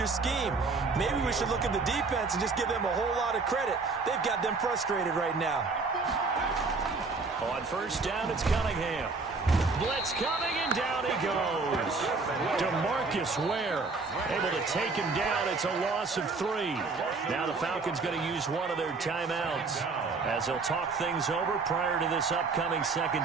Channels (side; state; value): left; quieter; 4.1 dB